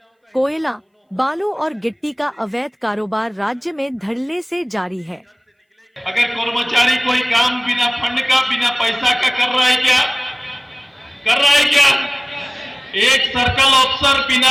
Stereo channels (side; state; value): both; identical; correlation 1.00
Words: कोयला, बालू और गिट्टी का अवैध कारोबार राज्य में धड़ल्ले से जारी है। अगर कर्मचारी कोई काम बिना फंड का, बिना पैसा का कर रहा है क्या? कर रहा है क्या? एक सर्कल अफसर